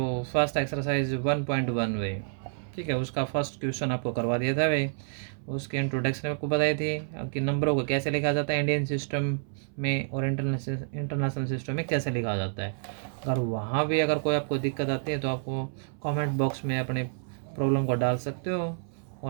फर्स्ट एक्सरसाइज 1.1 भाई, ठीक है, उसका फर्स्ट क्वेश्चन आपको करवा दिया था भाई। उसके इंट्रोडक्शन आपको बताई थी कि नंबरों को कैसे लिखा जाता है इंडियन सिस्टम में और इंटरनेशनल सिस्टम में कैसे लिखा जाता है। अगर वहाँ भी अगर कोई आपको दिक्कत आती है तो आपको कमेंट बॉक्स में अपने प्रॉब्लम को डाल सकते हो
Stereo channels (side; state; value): left; silent; 59 dB below the other